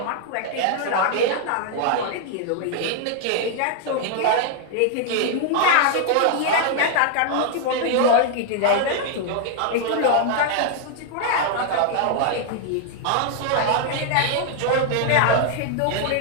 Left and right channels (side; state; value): both; different; correlation 0.00